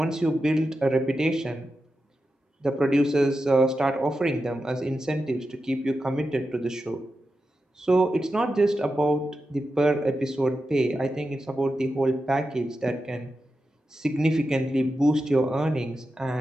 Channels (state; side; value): normal; both; correlation 0.90